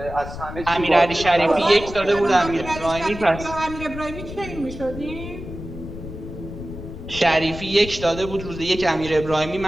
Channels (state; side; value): noise; left; rumble, 10 dB below the sound